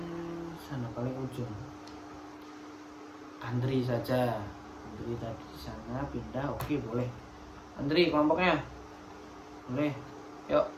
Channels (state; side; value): identical; both; correlation 1.00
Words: sana paling ujung, Andri saja. Andri tadi di sana pindah. Oke, boleh. Andri kelompoknya boleh. Yuk,